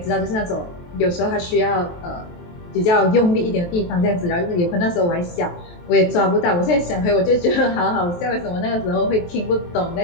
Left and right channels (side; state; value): right; late; 23 ms